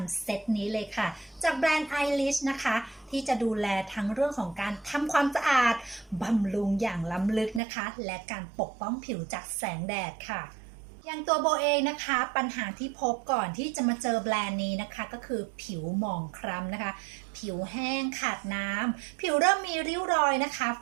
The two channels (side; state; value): left; drops out; at 7.6 s